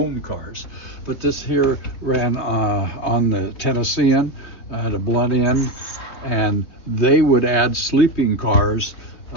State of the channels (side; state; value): right; late; 3.2 ms